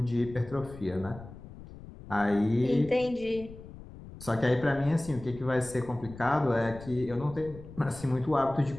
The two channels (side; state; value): left; noise; rumble, 16 dB below the sound